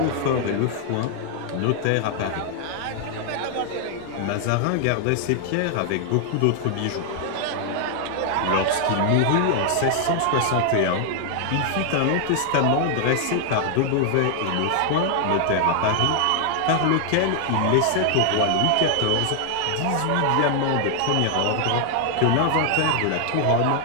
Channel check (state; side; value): different; both; correlation 0.00